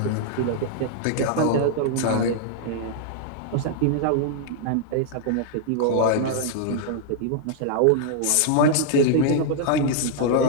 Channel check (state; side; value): different; both; correlation -0.01